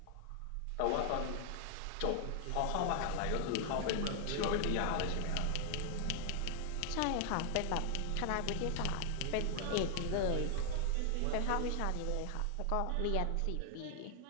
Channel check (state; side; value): different; both; correlation 0.00